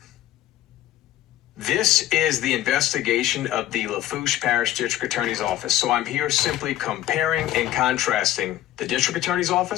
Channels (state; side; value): quieter; right; 13.5 dB